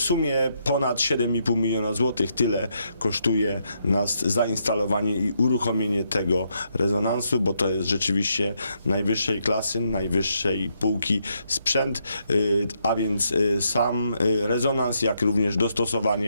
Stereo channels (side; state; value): both; inverted; correlation -0.78